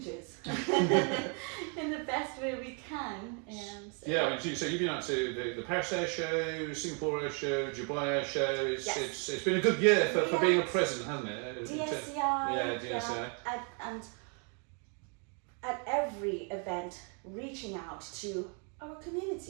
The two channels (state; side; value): quieter; left; 38.7 dB